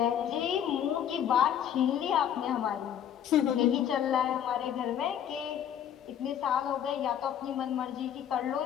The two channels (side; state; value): right; quieter; 9.6 dB